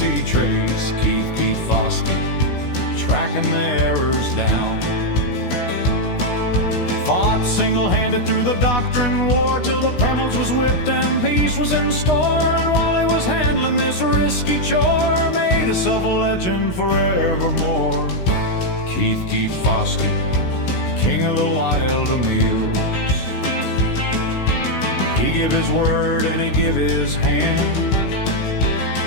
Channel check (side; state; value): right; late; 16 ms